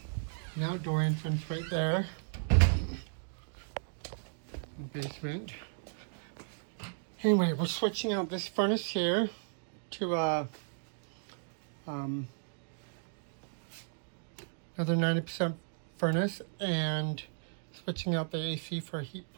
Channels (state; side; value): silent; left; digital silence